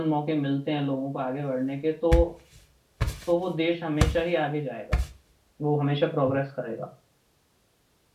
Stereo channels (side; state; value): both; identical; correlation 1.00